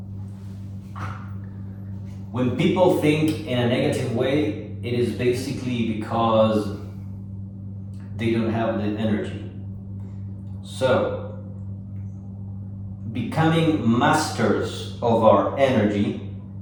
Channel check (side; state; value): both; identical; correlation 1.00